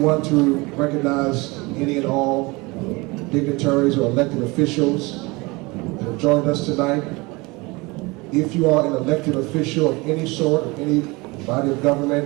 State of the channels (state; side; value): quieter; left; 24.6 dB